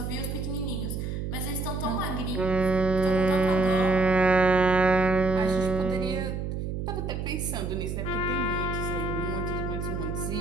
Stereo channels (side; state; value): right; noise; hum, 4 dB below the sound